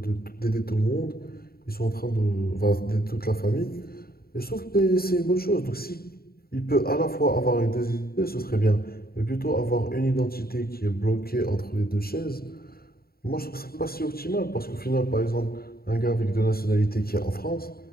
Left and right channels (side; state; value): right; late; 0.44 ms